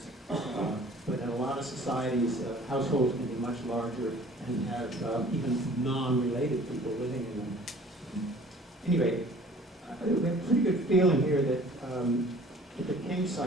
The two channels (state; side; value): normal; both; correlation 0.50